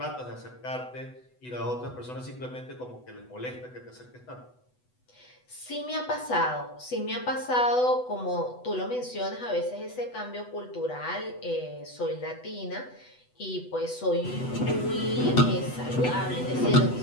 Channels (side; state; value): right; late; 8.0 ms